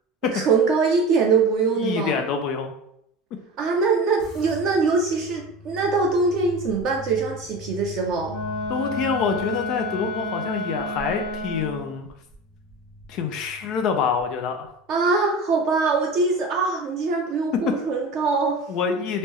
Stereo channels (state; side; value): normal; both; correlation 0.31